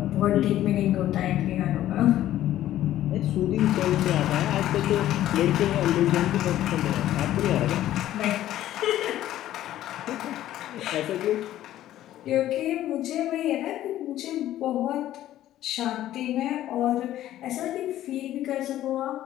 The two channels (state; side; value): quieter; right; 13.2 dB